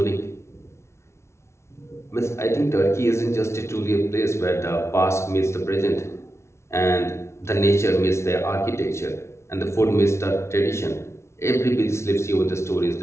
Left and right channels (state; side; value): late; right; 0.13 ms